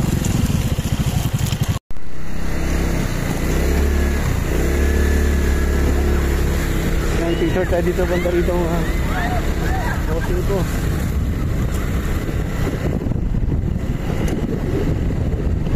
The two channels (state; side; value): identical; both; correlation 1.00